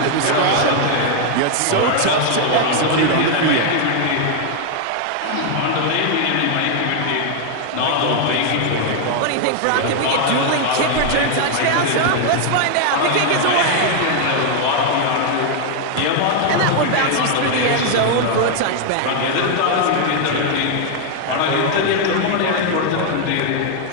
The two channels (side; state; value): both; different; correlation 0.00